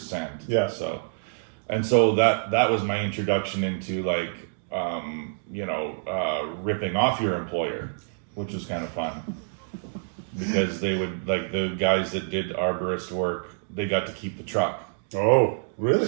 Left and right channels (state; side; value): silent; left; digital silence